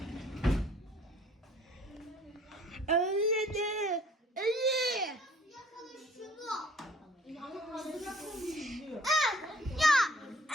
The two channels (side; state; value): both; normal; correlation 0.55